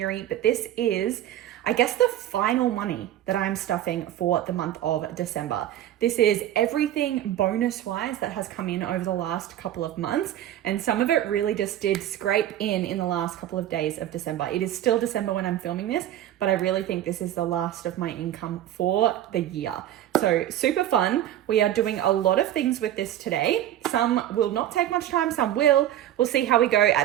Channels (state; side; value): quieter; left; 12.3 dB